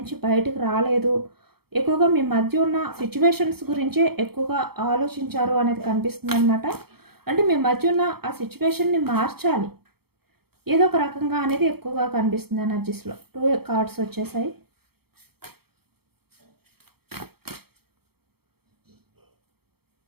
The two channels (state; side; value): late; left; 0.96 ms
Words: బయటకు రాలేదు. ఎక్కువగా మీ మధ్య ఉన్న సిచ్యువేషన్స్ గురించే ఎక్కువగా ఆలోచించారు అనేది కనిపిస్తుంది అనమాట. అంటే మీ మధ్య ఉన్న ఆ సిచ్యువేషన్ని మార్చాలి ఏదో ఒక రకంగా అనేది ఎక్కువగా కనిపిస్తుంది ఎనర్జీస్లో. 2 కార్డ్స్ వచ్చేసాయి.